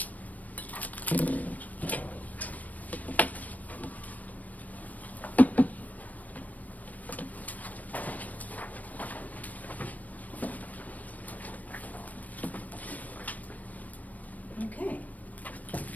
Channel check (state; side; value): late; right; 0.075 ms